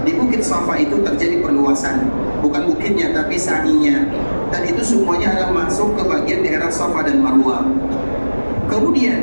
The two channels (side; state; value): both; inverted; correlation -1.00